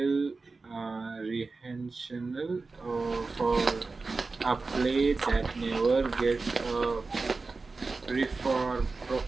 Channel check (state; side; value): quieter; left; 3.9 dB